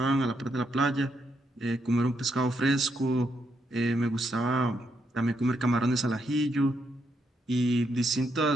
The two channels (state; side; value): normal; both; correlation 0.79